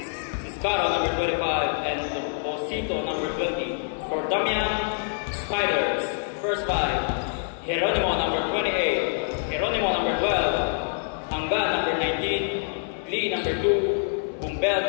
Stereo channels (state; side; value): silent; right; 61 dB below the other